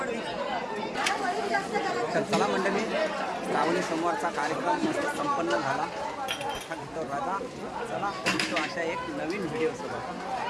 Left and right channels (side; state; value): both; identical; correlation 1.00